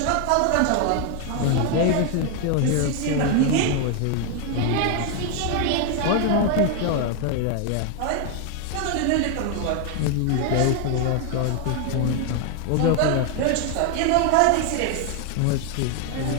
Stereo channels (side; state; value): both; different; correlation 0.01